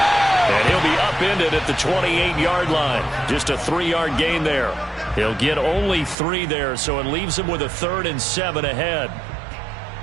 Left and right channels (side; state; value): left; drops out; at 6.2 s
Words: And he'll be upended at the 28-yard line. Just a 3-yard gain there. He'll get only 3 there, so it leaves him with a 3rd and 7 ahead.